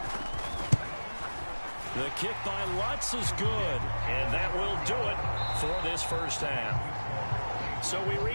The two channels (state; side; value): inverted; both; correlation -1.00